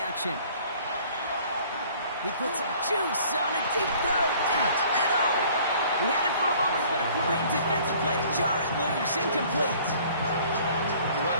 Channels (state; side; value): inverted; both; correlation -0.54